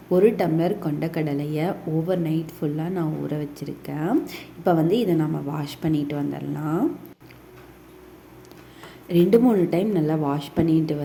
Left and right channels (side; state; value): both; identical; correlation 1.00